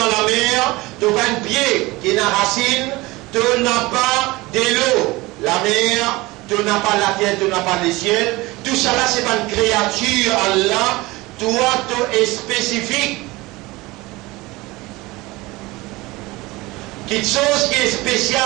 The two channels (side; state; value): left; quieter; 21.2 dB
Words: la mer, tu n'as pas un pied qui est une racine, tu n'as pas de l'eau, la mer, tu n'as pas la terre, tu n'as pas le ciel. Tout ça là, ce n'est pas une créature, Allah. Toi, tu es spécifique. Quelque chose qui est